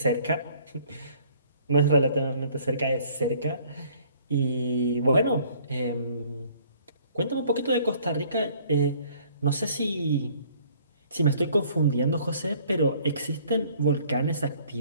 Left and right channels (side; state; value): both; inverted; correlation -0.58